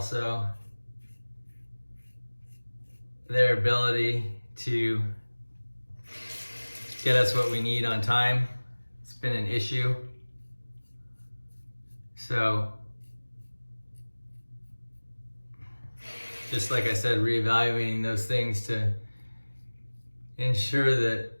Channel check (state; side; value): inverted; both; correlation -1.00